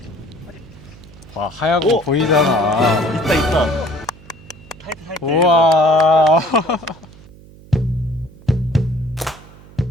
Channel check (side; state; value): right; noise; hum, 22 dB below the sound